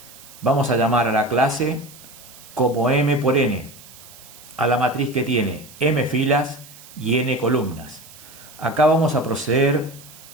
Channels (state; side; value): noise; right; hiss, 20 dB below the sound